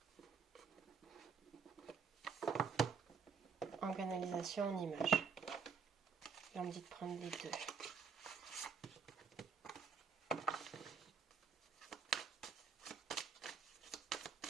En canalisation, en image. Là, on me dit de prendre les deux.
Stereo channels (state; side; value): quieter; left; 5.9 dB